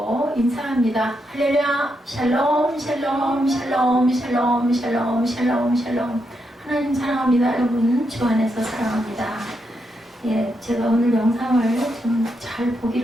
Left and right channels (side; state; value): both; normal; correlation 0.82